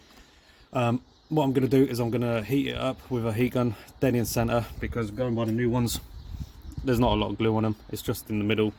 What I'm going to do is I'm going to heat it up with a heat gun dead in centre, because going by the new ones, there's not a lot of glue on them. It's just in the middle,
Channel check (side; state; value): both; identical; correlation 1.00